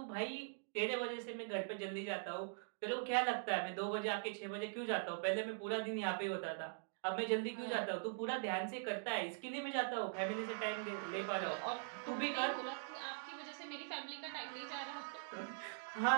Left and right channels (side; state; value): left; silent; digital silence